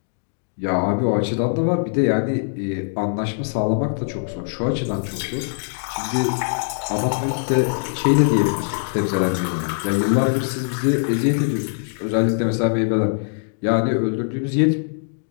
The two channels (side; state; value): right; silent; digital silence